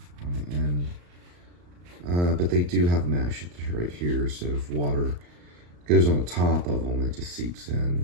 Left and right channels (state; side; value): late; left; 34 ms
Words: on the end. But they do have mesh right here, so if water goes on the top of them, it just seeps